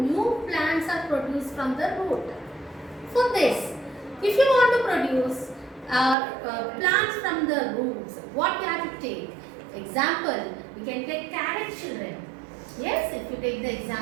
plants are produced from the root. For this, if you want to produce plants from the roots, what you have to take? Example, we can take carrot children. Yes, if you take the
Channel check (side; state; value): left; drops out; at 6.2 s